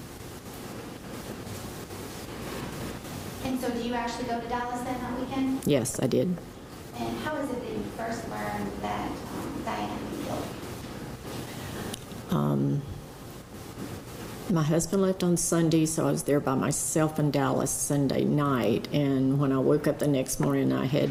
And so do you actually go to Dallas then that weekend? Yes, I did. And how is it that you first learned that Diane had been killed? My husband left on Sunday, so I was there by myself in Dallas Sunday night. And when I woke up the next morning, I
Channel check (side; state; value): both; identical; correlation 1.00